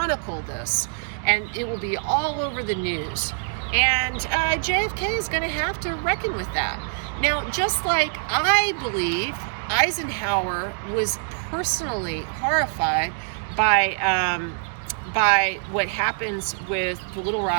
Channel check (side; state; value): left; silent; digital silence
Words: this, and it will be all over the news. And JFK is going to have to reckon with that. Now, just like I believe Eisenhower was personally horrified by what happens with the Little